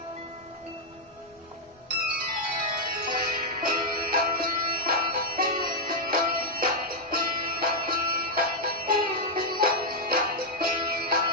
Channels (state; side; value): normal; both; correlation -0.03